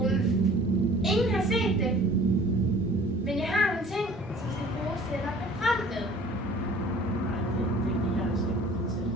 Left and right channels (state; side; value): normal; both; correlation 0.49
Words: Ingen har set det. Men jeg har nogle ting, som skal bruges til at lokke frem med.